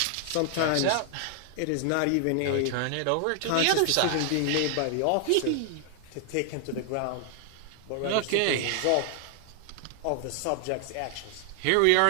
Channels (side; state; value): both; different; correlation 0.00